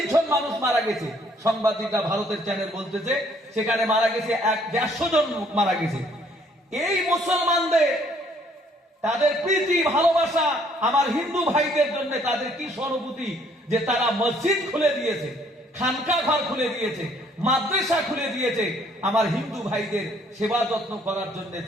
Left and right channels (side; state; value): both; normal; correlation 0.63